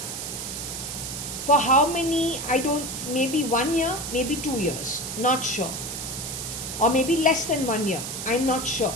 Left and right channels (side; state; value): right; noise; hiss, 6 dB below the sound